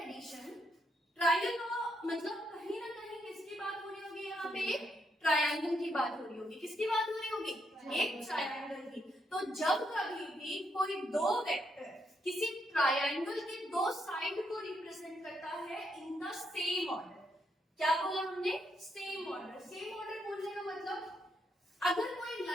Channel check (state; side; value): normal; both; correlation 0.78